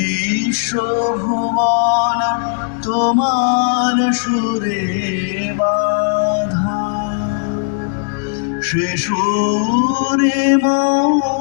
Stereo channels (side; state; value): right; silent; digital silence